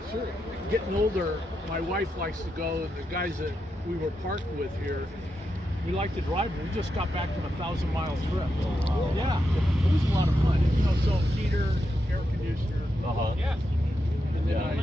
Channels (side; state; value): both; normal; correlation 0.85